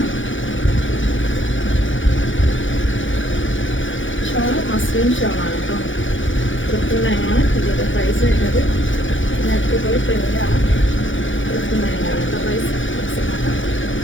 ഷോൾ മസ്ലിൻ ഷോളാണ് കേട്ടോ. 999 ആണ് ഇതിൻ്റെ പ്രൈസ് വരുന്നത്. നെറ്റ് പോയി പ്രിൻ്റാണ്. 999 ആണ് കേട്ടോ പ്രൈസ്.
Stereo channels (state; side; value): late; right; 0.56 ms